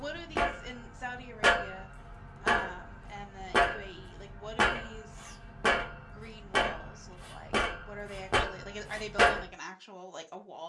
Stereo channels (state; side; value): identical; both; correlation 1.00